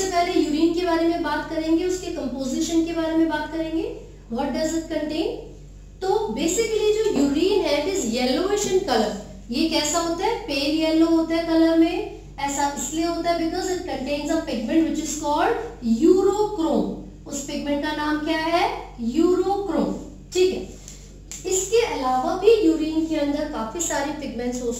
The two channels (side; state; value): both; identical; correlation 1.00